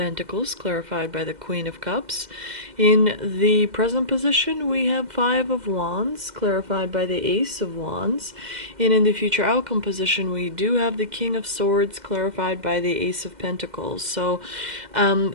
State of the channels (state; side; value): late; left; 2.0 ms